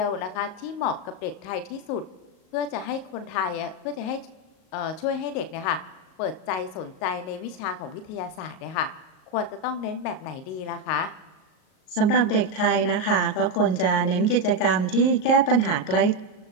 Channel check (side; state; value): right; late; 38 ms